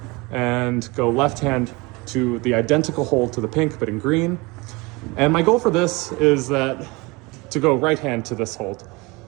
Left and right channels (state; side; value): quieter; left; 25.2 dB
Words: and go left hand to the identical hold to the pink, but in green. And my goal for this is that to go right hand to this hold,